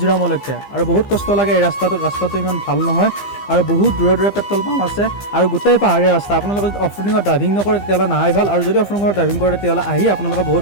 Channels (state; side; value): late; right; 15 ms